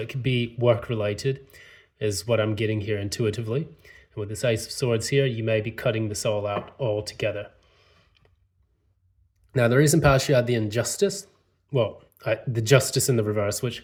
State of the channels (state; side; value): identical; both; correlation 1.00